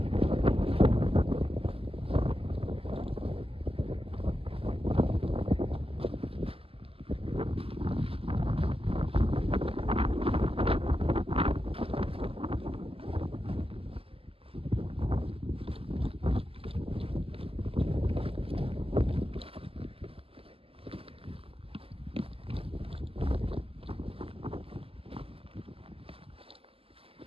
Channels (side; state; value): left; late; 0.27 ms